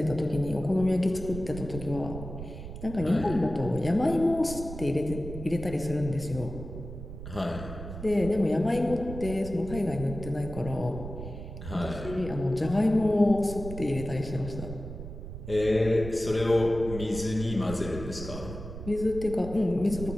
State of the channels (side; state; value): right; noise; rumble, 10 dB below the sound